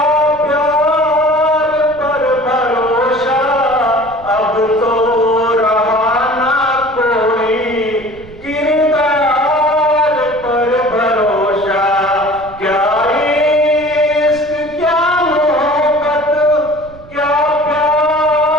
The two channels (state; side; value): noise; right; rumble, 20 dB below the sound